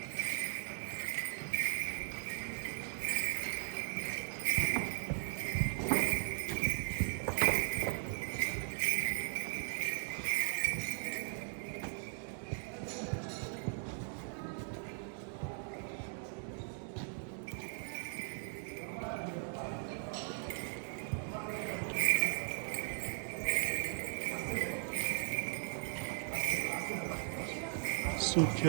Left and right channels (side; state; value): left; silent; 52 dB below the other